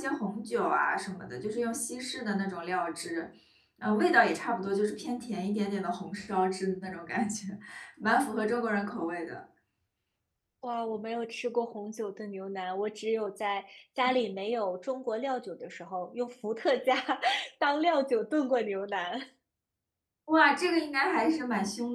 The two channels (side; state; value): both; identical; correlation 1.00